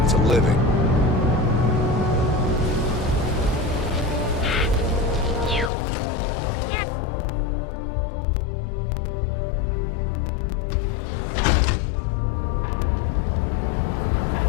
It's a living.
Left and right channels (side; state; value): right; drops out; at 5.7 s